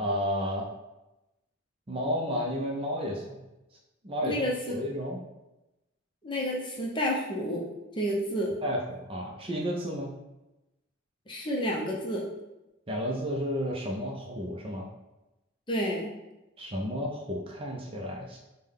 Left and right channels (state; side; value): normal; both; correlation 0.20